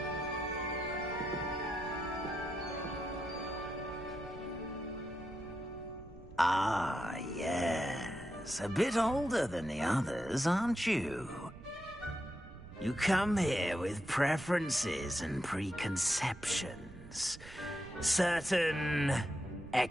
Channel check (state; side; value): noise; right; rumble, 17 dB below the sound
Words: Ah, yes. A bit older than the others, aren't you? You come here with preferences and preconceptions. Certain